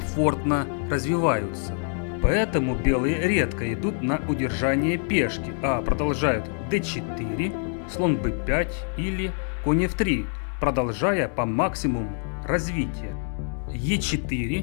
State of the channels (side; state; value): right; silent; 56 dB below the other